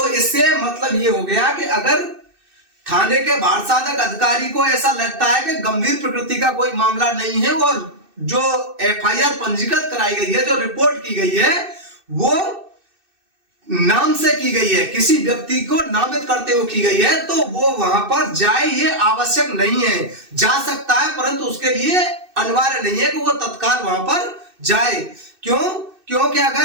इससे मतलब ये हो गया कि अगर थाने के भार साधक अधिकारी को ऐसा लगता है कि गंभीर प्रकृति का कोई मामला नहीं है और जो एफआईआर पंजीकृत कराई गई है, जो रिपोर्ट की गई है, वो नाम से की गई है, किसी व्यक्ति को नामित करते हुए की गई है, तो वो वहां पर जाए ये आवश्यक नहीं है। जा सकता है परंतु उसके लिए अनिवार्य नहीं है कि वो तत्काल वहां पर जाए। क्यों? क्योंकि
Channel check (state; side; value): late; left; 2.6 ms